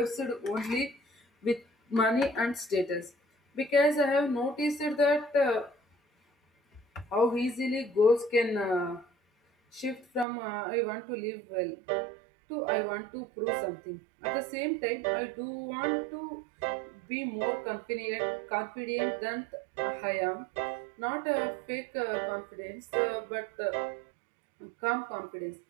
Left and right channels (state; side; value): drops out; left; at 10.2 s